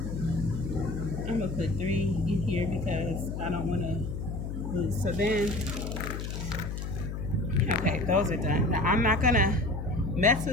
I'm gonna put 3 in here because I don't want to lose. So then, okay, those are done. Now I'm not gonna mess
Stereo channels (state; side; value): noise; left; hum, 5 dB below the sound